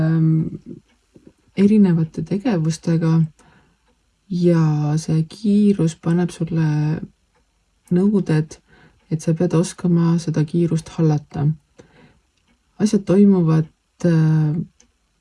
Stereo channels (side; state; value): both; identical; correlation 1.00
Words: erinevate tegevustega ja see kiirus paneb sulle nõuded, et sa pead oskama seda kiirust hallata. Asjad toimuvad